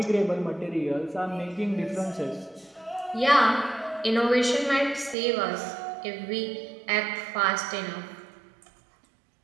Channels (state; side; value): drops out; left; at 5.2 s